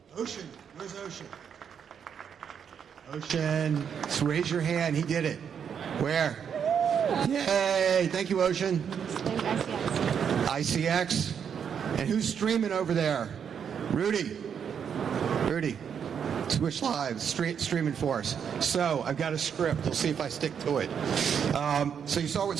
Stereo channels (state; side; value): quieter; left; 7.6 dB